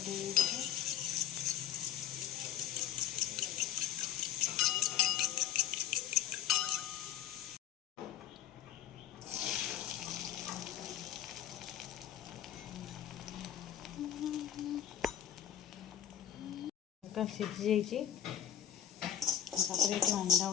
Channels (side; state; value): right; quieter; 10.3 dB